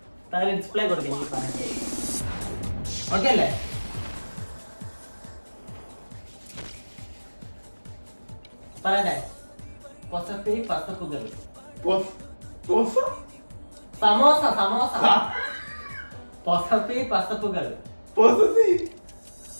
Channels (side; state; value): both; inverted; correlation -1.00